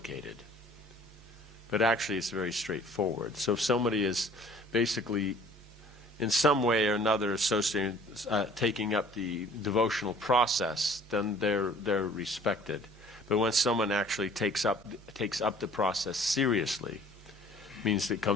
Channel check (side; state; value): both; normal; correlation 0.52